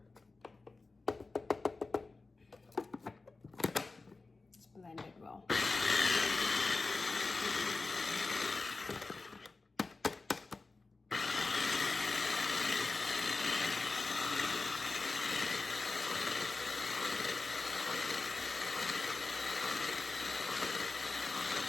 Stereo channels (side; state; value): right; quieter; 3.7 dB